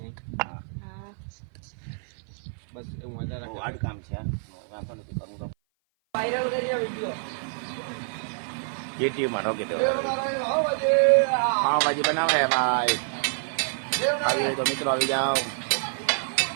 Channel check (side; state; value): left; silent; 56 dB below the other